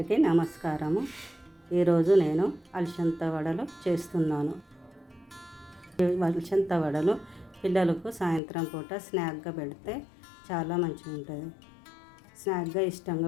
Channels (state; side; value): drops out; right; at 8.4 s